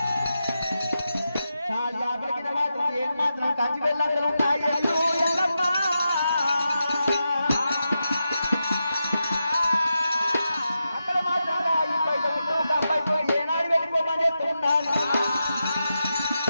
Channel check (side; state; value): both; inverted; correlation -0.88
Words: చాల్యాపురికి మాత్రం ఏం మాత్రం కంచి వెళ్ళందరూ ఉన్నాయి ఎల్లు ఎల్లమ్మ అక్కడ మాత్రం ఈ బయట అబ్బాయి ఏనాడు వెళ్ళిపోమని చెప్తున్నాను